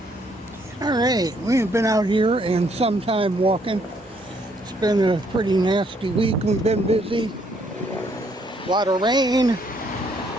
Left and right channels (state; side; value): normal; both; correlation 0.69